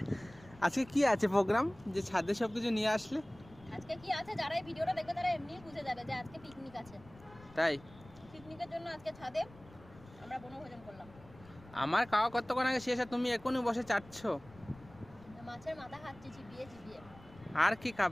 আজকে কি আছে প্রোগ্রাম যে ছাদে সব কিছু নিয়ে আসলে? আজকে কি আছে, যারা এই ভিডিওটা দেখবে তারা এমনিই বুঝে যাবে যে আজকে পিকনিক আছে। তাই? পিকনিকের জন্য আজকে ছাদে আমরা বনভোজন করলাম। আমার খাওয়া কতক্ষণ আগে শেষ আর তুমি এখনই বসে চাটছো? মাছের মাথা খাচ্ছি চিবিয়ে চিবিয়ে। আর কি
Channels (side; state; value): left; noise; rumble, 21 dB below the sound